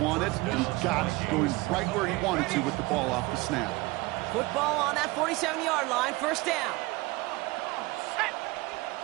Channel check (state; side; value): quieter; left; 22.2 dB